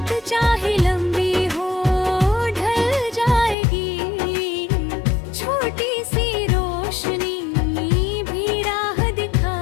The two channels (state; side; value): drops out; right; at 3.6 s